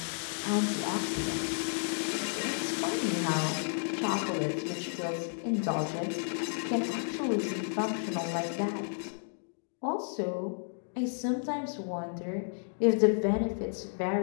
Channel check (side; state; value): right; silent; digital silence